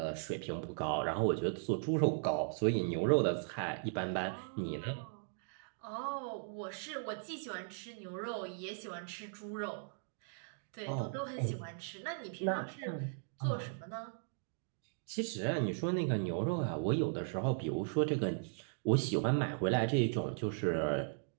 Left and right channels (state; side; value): silent; left; digital silence